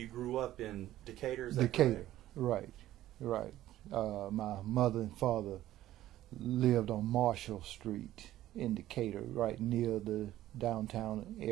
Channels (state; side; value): quieter; left; 14.0 dB